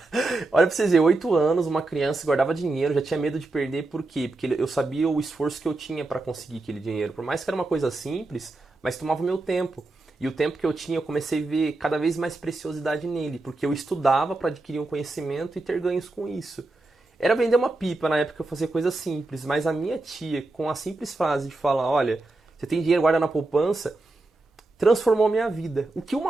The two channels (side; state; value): left; quieter; 3.1 dB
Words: Olha pra vocês verem, 8 anos, uma criança guardava dinheiro, já tinha medo de perder, por quê? Porque eu sabia o esforço que eu tinha pra conseguir aquele dinheiro. Por mais que era uma coisa simples, mas tomava o meu tempo. E o tempo que eu tinha, eu comecei a ver cada vez mais preciosidade nele, porque eu estudava para adquirir um conhecimento e ter ganhos com isso. Era vender uma pipa, na época eu fazia coisa simples, mas a minha tia, com a simples frase de falar, olha, você tem dinheiro, guarda na poupança, transformou a minha vida. O que